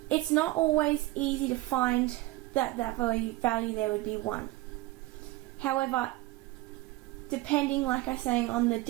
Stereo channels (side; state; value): left; quieter; 18.5 dB